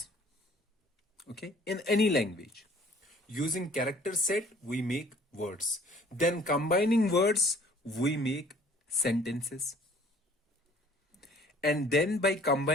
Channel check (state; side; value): normal; both; correlation 0.54